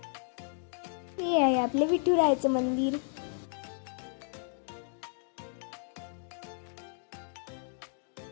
हे आहे आपले विठुरायाचं मंदिर.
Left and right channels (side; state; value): right; silent; 56 dB below the other